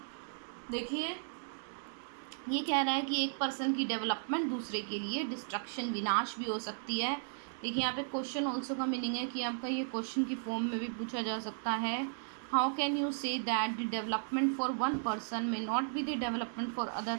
देखिए ये कह रहा है कि एक पर्सन की डेवलपमेंट दूसरे के लिए डिस्ट्रक्शन, विनाश भी हो सकती है. देखिए यहाँ पे क्वेश्चन ऑल्सो का मीनिंग है कि आपका ये क्वेश्चन की फॉर्म में भी पूछा जा सकता है. How can you say that the development for one person may not be the development for other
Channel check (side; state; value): left; silent; digital silence